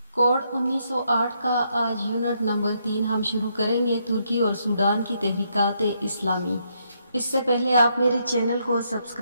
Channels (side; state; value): both; inverted; correlation -0.76